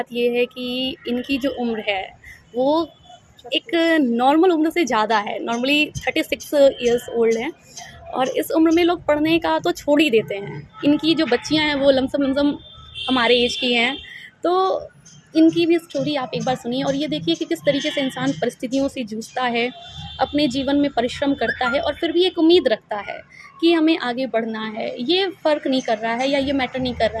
ये है कि इनकी जो उम्र है वो एक नॉर्मल उम्र से ज़्यादा है। नॉर्मली 36 ईयर्स ओल्ड हैं, और इस उम्र में लोग पढ़ने का तो छोड़ ही देते हैं। इनकी जो बच्चियां हैं वो लमसम लमसम हमारे एज की हैं। तो इनकी भी स्टोरी आप एक बार सुनिए, और ये देखिए कि किस तरीके से इंसान परिस्थितियों से जूझता है, अपने जीवन में परिश्रम करता है, और फिर भी एक उम्मीद रखता है कि हमें आगे बढ़ना है। ये फ़र्क नहीं कर रहा है, या ये मैटर नहीं कर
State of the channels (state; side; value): identical; both; correlation 1.00